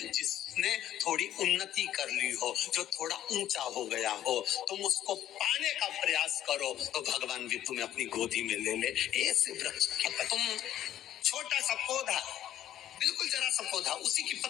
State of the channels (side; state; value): right; quieter; 12.0 dB